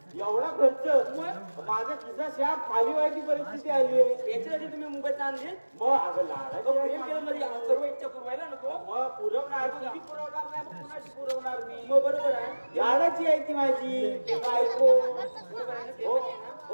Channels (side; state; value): both; inverted; correlation -1.00